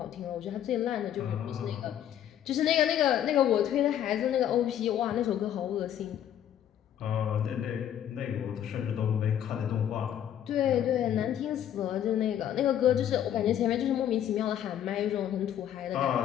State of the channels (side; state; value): right; quieter; 10.4 dB